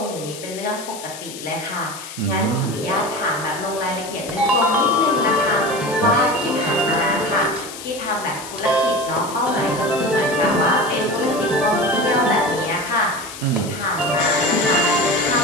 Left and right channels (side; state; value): left; noise; hiss, 12 dB below the sound